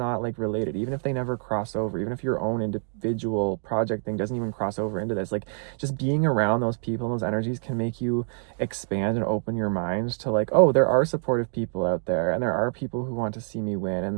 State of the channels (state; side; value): silent; left; 61 dB below the other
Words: like related, even if they never cross over, even if your own individual project thing doesn't even cross over into this. Like, just being around those people and those energies can make you expand and open your mind to like, oh, there are supportive people out there, and there are people who want to see me win,